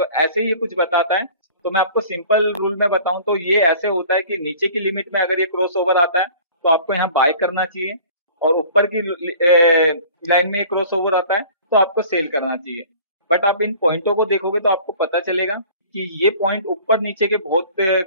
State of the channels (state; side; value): inverted; both; correlation -0.47